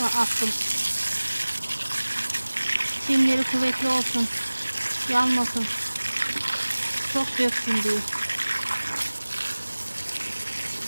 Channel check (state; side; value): inverted; both; correlation -1.00